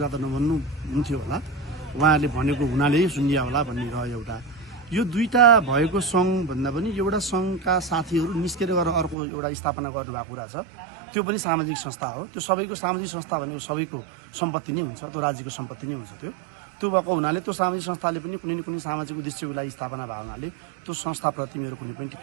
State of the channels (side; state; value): left; drops out; at 9.2 s